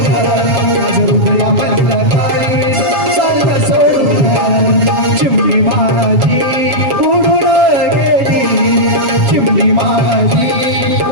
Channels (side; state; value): left; late; 7.2 ms